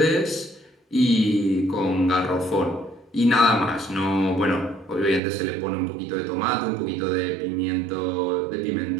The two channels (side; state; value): left; drops out; at 5.2 s